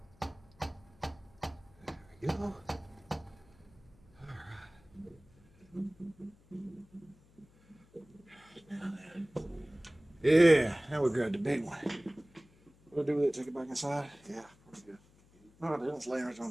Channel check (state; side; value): noise; left; hum, 28 dB below the sound